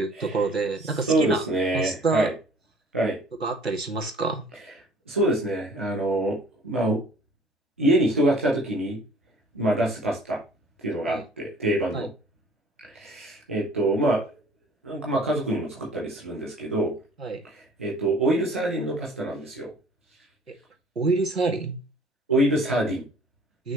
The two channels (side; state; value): both; normal; correlation 0.52